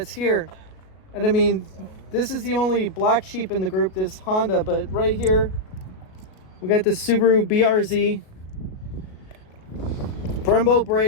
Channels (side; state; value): right; late; 37 ms